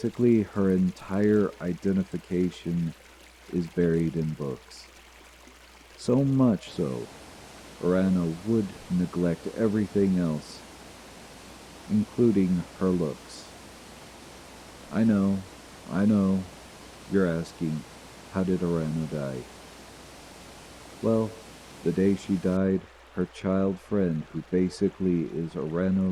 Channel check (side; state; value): both; identical; correlation 1.00